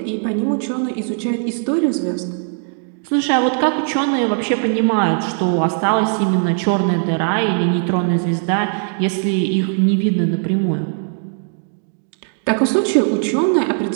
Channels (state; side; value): silent; left; 60 dB below the other